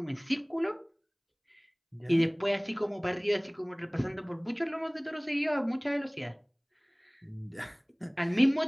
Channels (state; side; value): identical; both; correlation 1.00